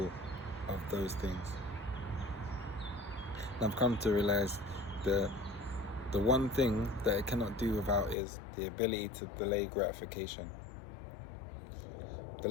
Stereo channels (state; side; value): drops out; right; at 8.2 s